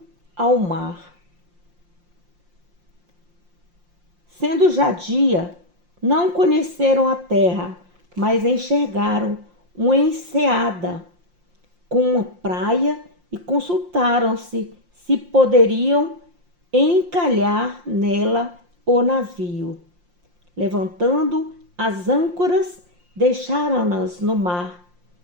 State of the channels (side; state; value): left; late; 5.7 ms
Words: ao mar. Sendo já dia, não conheceram a terra, mas enxergaram uma enseada com uma praia e consultaram-se se poderiam encalhar nela o navio. Levantando as âncoras, deixaram-nas no mar,